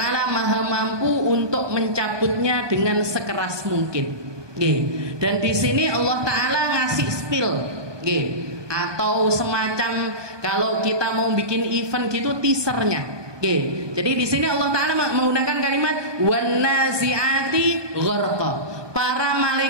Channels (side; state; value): left; late; 1.2 ms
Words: Maha mampu untuk mencabutnya dengan sekeras mungkin. Dan di sini Allah taala ngasih spill, atau semacam kalau kita mau bikin event gitu teasernya. Jadi di sini Allah taala menggunakan kalimat wan nazi'ati gharqa, para